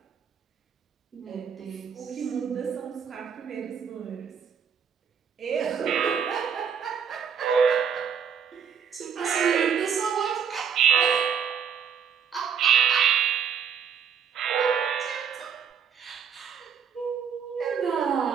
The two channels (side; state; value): left; quieter; 7.2 dB